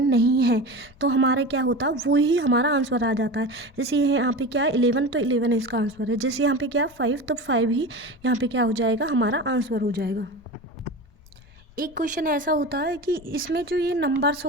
नहीं है, तो हमारा क्या होता है, वो ही हमारा आंसर आ जाता है। जैसे ये यहाँ पे क्या है 11, तो 11 इसका आंसर है। जैसे यहाँ पे क्या 5, तो 5 ही यहाँ पे क्या हो जाएगा, हमारा आंसर हो जाएगा। एक क्वेश्चन ऐसा होता है कि इसमें जो ये नंबर्स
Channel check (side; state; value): both; normal; correlation 0.29